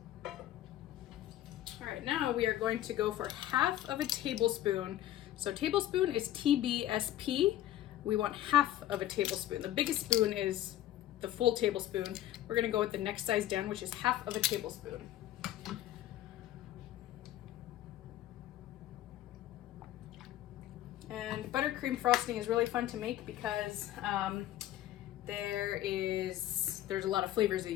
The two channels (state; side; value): quieter; right; 13.2 dB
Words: All right, now we are going to go for half of a tablespoon. So tablespoon is TBSP. We want half of a tablespoon. The biggest spoon is the full tablespoon. We're gonna go with the next size down, which is half of a tablespoon. And buttercream frosting is really fun to make because there's a lot of flavors that